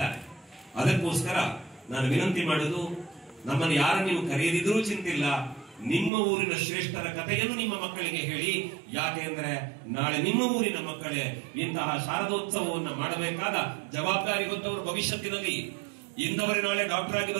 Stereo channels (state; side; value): drops out; left; at 6.1 s